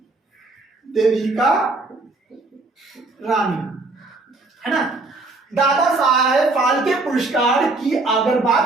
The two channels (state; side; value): quieter; left; 3.3 dB